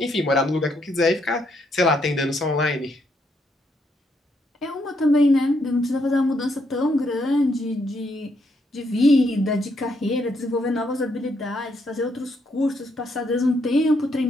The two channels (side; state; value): both; normal; correlation 0.75